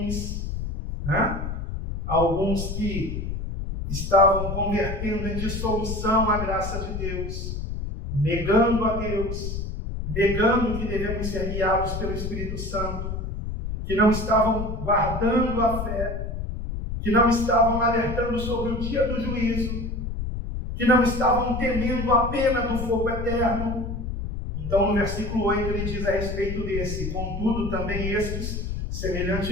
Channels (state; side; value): noise; left; rumble, 5 dB below the sound